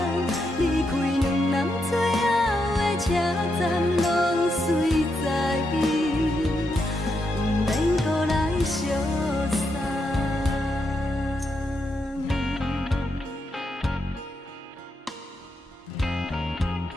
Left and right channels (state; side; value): normal; both; correlation 0.82